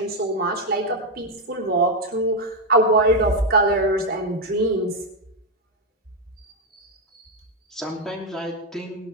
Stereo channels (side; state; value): both; normal; correlation 0.04